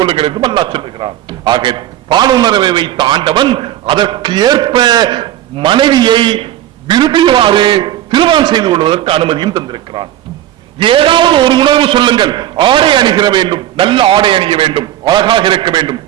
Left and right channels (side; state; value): left; quieter; 12.8 dB